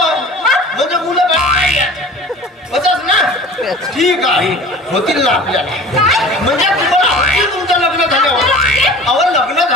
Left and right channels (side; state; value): both; normal; correlation 0.41